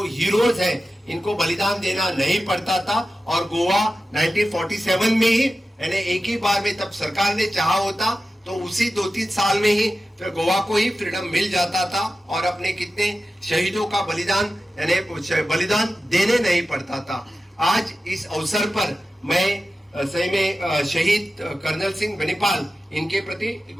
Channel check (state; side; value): normal; both; correlation 0.93